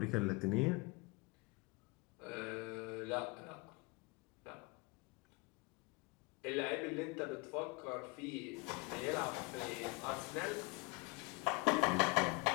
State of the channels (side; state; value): right; quieter; 26.3 dB